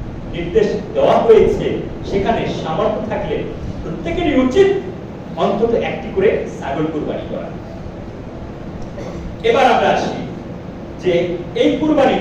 নির্দেশ দেওয়া হয়েছে। সেখানে সামর্থ্য থাকলে প্রত্যেকেরই উচিত অন্তত একটি করে ছাগল কুরবানি করা। এবার আমরা আসি যে এই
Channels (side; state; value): both; identical; correlation 1.00